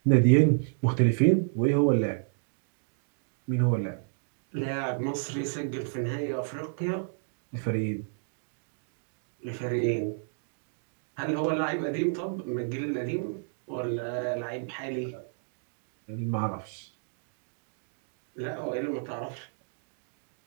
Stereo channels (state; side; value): silent; left; digital silence